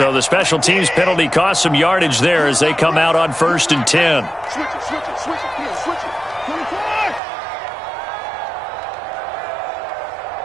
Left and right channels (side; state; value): left; drops out; at 7.2 s